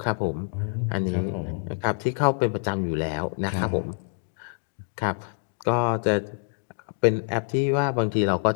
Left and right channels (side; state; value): right; silent; digital silence